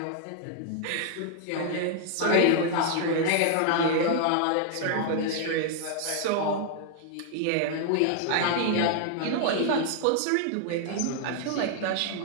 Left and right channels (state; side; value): different; both; correlation 0.00